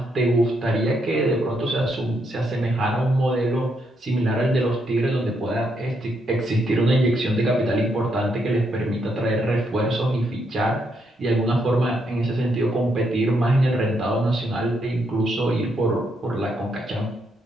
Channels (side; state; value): both; normal; correlation 0.77